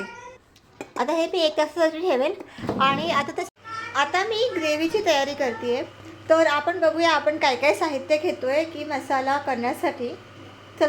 आता हे मी 1 तासासाठी ठेवेल. आणि आता मी ग्रेव्हीची तयारी करते आहे. तर आपण बघूया आपण काय काय साहित्य घेतो आहे की मसाला करण्यासाठी.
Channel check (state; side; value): identical; both; correlation 1.00